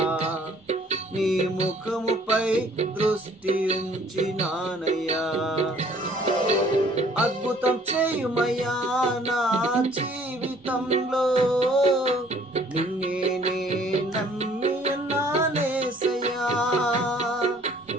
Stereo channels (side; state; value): both; normal; correlation 0.58